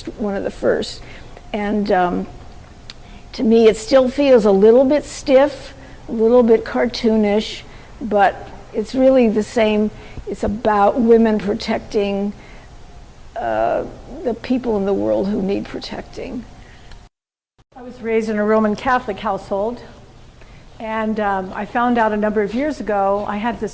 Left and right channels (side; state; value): both; identical; correlation 1.00